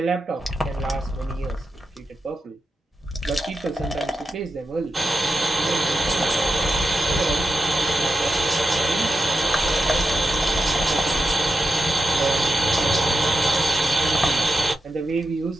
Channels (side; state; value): both; normal; correlation 0.88